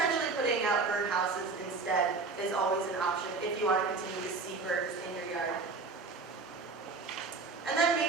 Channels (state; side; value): quieter; left; 4.1 dB